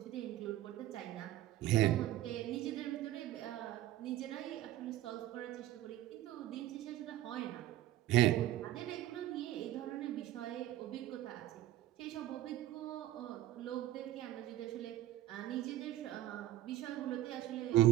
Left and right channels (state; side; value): quieter; left; 14.2 dB